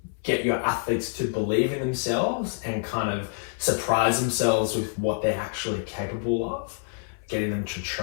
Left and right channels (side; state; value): right; silent; 60 dB below the other